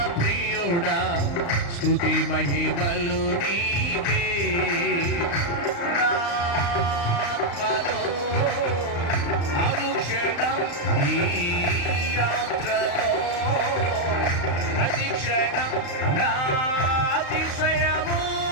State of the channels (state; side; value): late; right; 35 ms